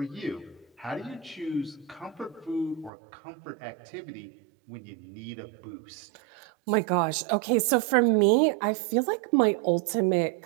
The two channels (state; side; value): drops out; left; at 2.9 s